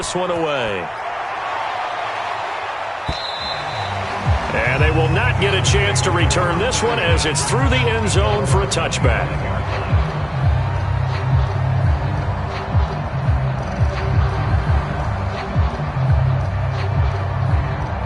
one away. And they will not get a chance to return this one as it's through the end zone for a touchback.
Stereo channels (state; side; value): identical; both; correlation 1.00